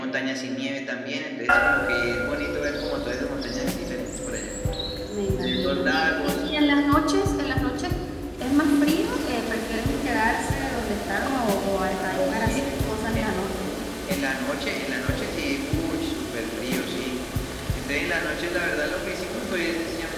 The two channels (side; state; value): both; identical; correlation 1.00